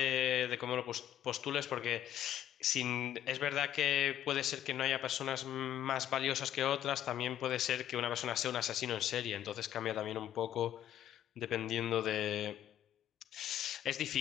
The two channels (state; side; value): quieter; right; 11.5 dB